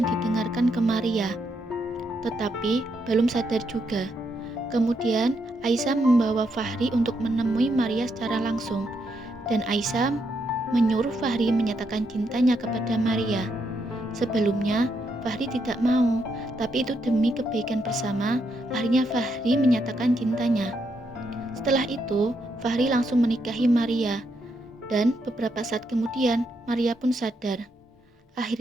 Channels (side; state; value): both; normal; correlation 0.78